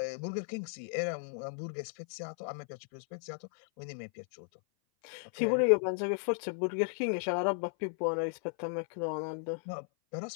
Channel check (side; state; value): right; silent; 54 dB below the other